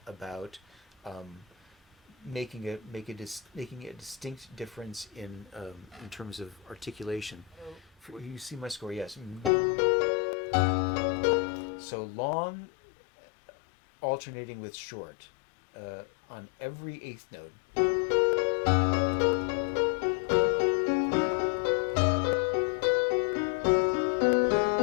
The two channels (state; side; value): drops out; right; at 9.5 s